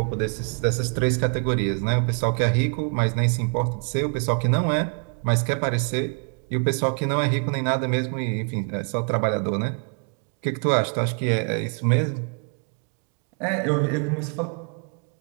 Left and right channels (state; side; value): quieter; left; 38.1 dB